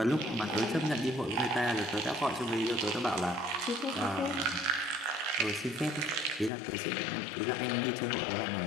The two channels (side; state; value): right; drops out; at 6.5 s